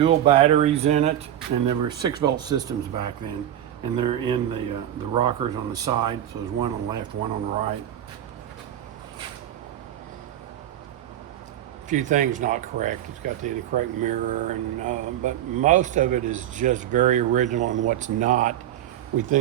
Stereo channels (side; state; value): left; quieter; 11.5 dB